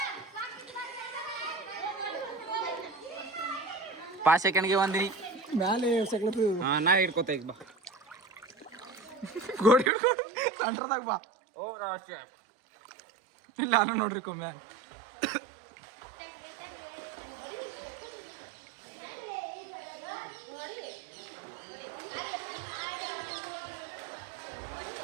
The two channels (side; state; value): left; drops out; at 9.9 s